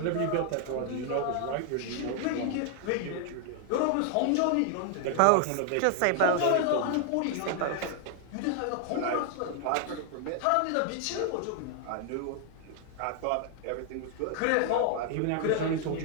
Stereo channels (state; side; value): different; both; correlation 0.00